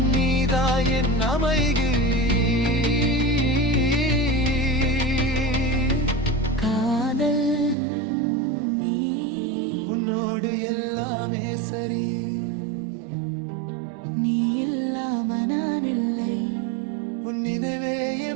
நீதா என் அமைதி. காதல் நீ உன்னோடு எல்லாமே சரி. நீ இல்லாம நான் இல்லை. உன் நினைவே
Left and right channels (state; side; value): drops out; left; at 7.8 s